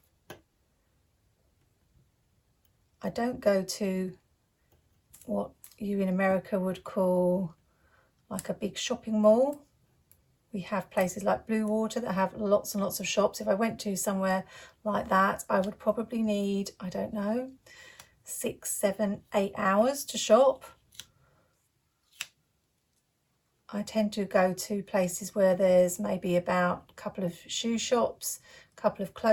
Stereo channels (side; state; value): both; identical; correlation 1.00